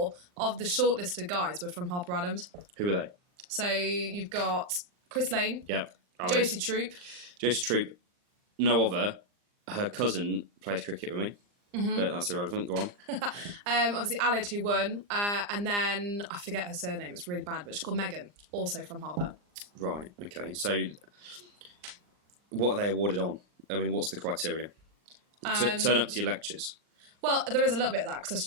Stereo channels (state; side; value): late; left; 39 ms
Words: of the shortlisted guys were from Harper Adams. Who were they? So you've got Chris Lane. Yep. Josie Troop. Josie Troop. No other. Her cousin plays cricket with me. But that's irrelevant. Go on. Obviously, Alid, who won. And then, I forget her surname. It's really bad, but she's called Megan, also from Harper. Right, okay. So, what are they awarded on? I mean, what's the criteria? Turn up to your lectures. Well, there is a little bit of that because